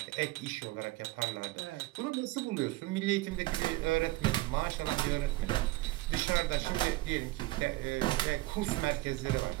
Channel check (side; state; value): left; quieter; 19.7 dB